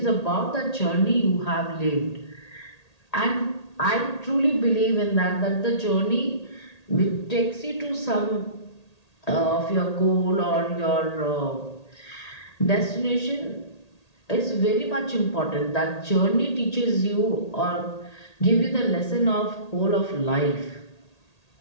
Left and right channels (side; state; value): right; late; 1.8 ms